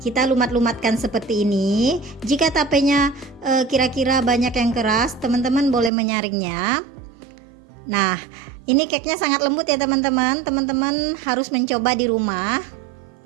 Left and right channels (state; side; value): drops out; left; at 5.9 s